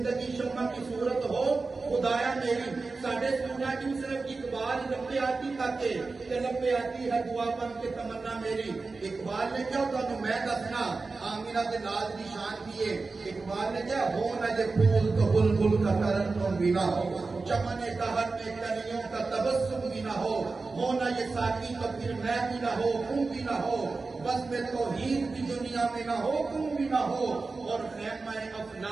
शम्मा की सूरत हो खुदाया मेरी। साढ़े सूरज की सिर्फ इकबाल लपे आती ताके लपे आती है दुआ बन के तमन्ना मेरी। इकबाल ने क्या तुम मैं दसना आमिना के नाज की शान की है। इकबाल ने क्या हो न जे फूल तो बुलबुल का तरन तुम भी ना हो, चमने दहर में कलियों का तबस्सुम भी ना हो न ये साकी तो फिर मैं भी ना हो तुम भी ना हो, बस में तो हीर की दुनिया में ना हो तुम भी ना हो। और खैमा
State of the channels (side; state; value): left; quieter; 3.9 dB